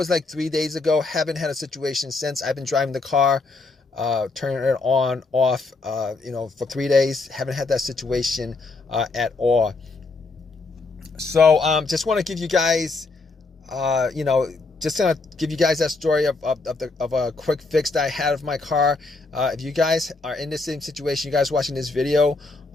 like 3 days ago. Haven't had a situation since. I've been driving the car, turning it on, off, for 3 days. Haven't had that situation at all. So just want to give you guys, just gonna give you guys that story of a quick fix that I had of my car. If you guys are in the same situation, you guys watching this video,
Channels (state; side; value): quieter; right; 3.6 dB